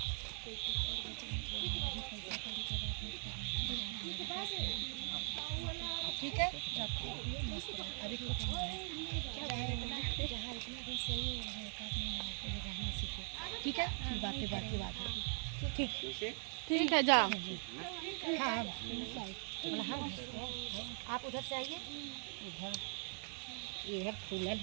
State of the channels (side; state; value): left; silent; 50 dB below the other